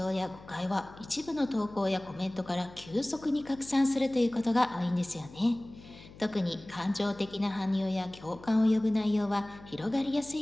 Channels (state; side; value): noise; left; hum, 19 dB below the sound